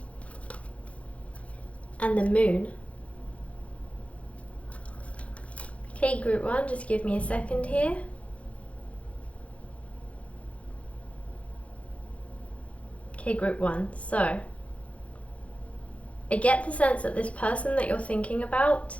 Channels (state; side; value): late; right; 0.064 ms